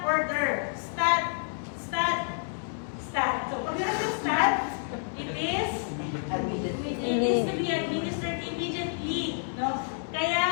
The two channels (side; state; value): right; silent; 59 dB below the other